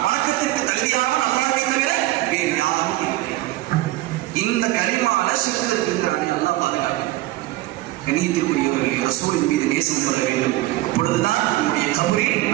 வணக்கத்திற்கு தகுதியானவன் அல்லாஹ்வை தவிர வேறு யாரும் இல்லை. இந்த கலிமால ஷிர்க் இருக்குங்கிறானே, அல்லாஹ் பாதுகாக்க. கண்ணியத்திற்குரியவர்களே, ரசூலின் மீது நேசம் கொள்ள வேண்டும். அப்பொழுதுதான் நம்முடைய கபரில்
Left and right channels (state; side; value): quieter; left; 17.4 dB